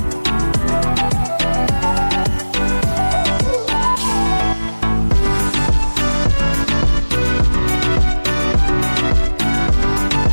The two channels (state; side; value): inverted; both; correlation -1.00